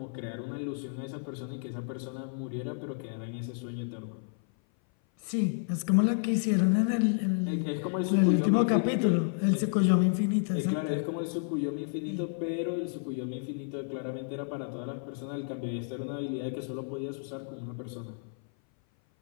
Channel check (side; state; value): right; silent; 56 dB below the other